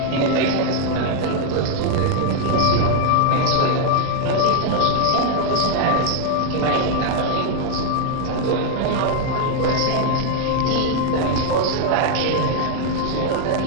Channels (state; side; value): different; both; correlation 0.00